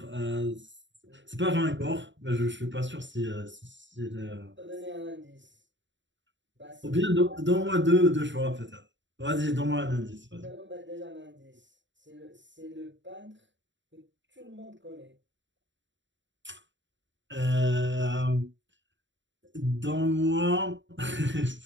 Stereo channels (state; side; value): late; left; 0.54 ms